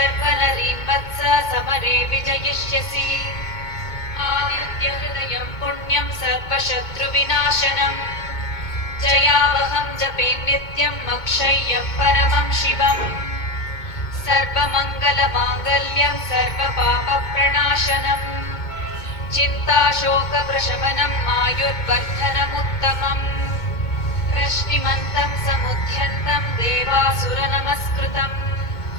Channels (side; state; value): right; late; 2.2 ms